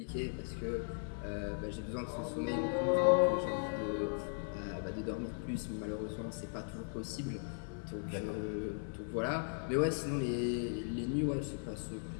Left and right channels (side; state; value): right; silent; digital silence